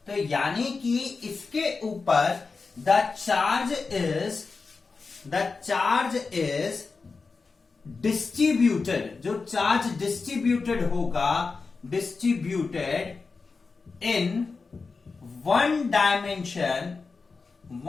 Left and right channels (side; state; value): right; quieter; 4.4 dB